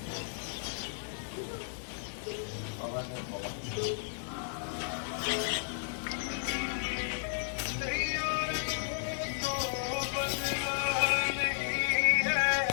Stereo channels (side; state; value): right; silent; digital silence